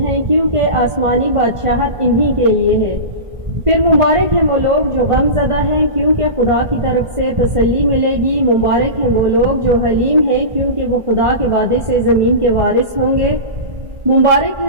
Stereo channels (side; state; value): left; late; 1.5 ms